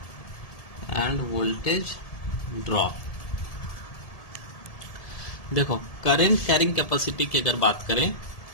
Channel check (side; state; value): right; late; 1.7 ms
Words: देखो, करंट कैरिंग कैपेसिटी की अगर बात करें